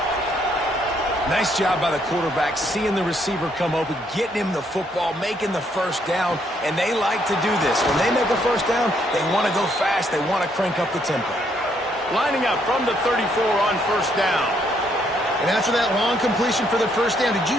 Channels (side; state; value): both; normal; correlation 0.71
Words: Nice job by the quarterback, seeing the receiver come open, getting him the football, making the first down, and they like to do this. When they make a first down, they want to go fast, they want to crank up the tempo. Lining up from the 34 on first down. And after that long completion for the first down, did